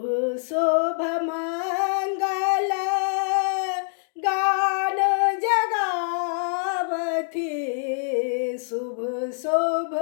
शोभ मंगल गान जगावथी शुभ शोभ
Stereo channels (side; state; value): right; silent; digital silence